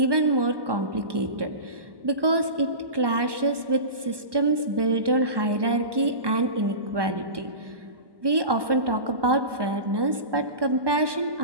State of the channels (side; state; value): left; late; 1.2 ms